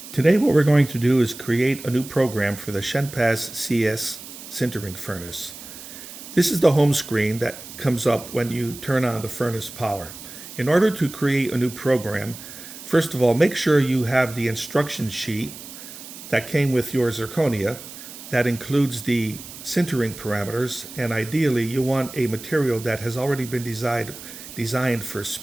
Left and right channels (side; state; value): right; noise; hiss, 14 dB below the sound